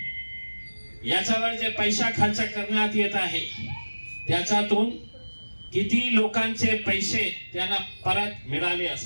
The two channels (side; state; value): both; inverted; correlation -1.00